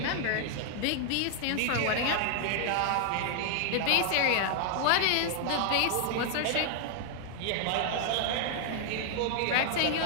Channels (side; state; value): both; different; correlation 0.00